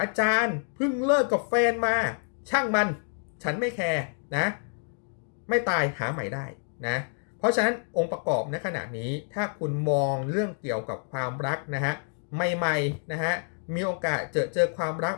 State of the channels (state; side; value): silent; right; 55 dB below the other